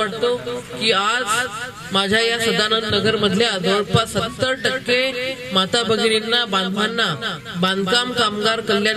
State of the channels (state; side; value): identical; both; correlation 1.00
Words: की आज माझ्या या सदानंद नगर मधल्या जवळपास 70% माता भगिनींना, बांधवांना बांधकाम कामगार